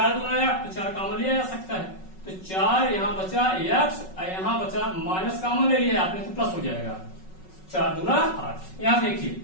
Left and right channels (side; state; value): right; late; 5.4 ms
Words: दूना 8 तो 4 कॉमन लिया जा सकता है, तो 4 यहाँ बचा x और यहाँ बचा माइनस कॉमन ले लिया आपने तो प्लस हो जाएगा, 4 दूना 8। यहाँ देखिए